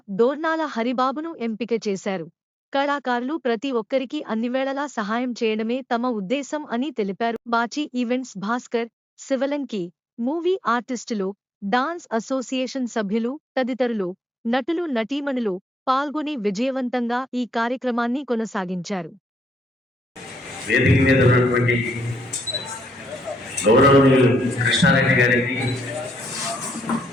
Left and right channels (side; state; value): both; normal; correlation 0.78